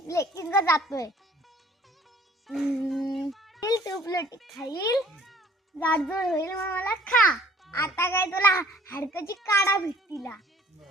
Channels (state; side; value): normal; both; correlation 0.54